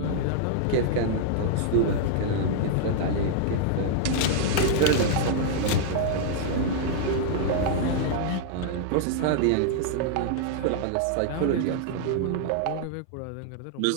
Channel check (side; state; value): both; different; correlation -0.01